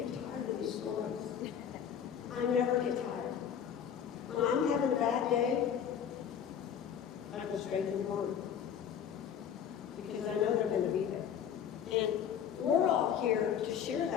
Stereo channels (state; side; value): quieter; right; 8.5 dB